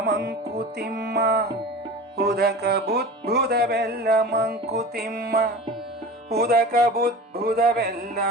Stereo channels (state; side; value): normal; both; correlation 0.34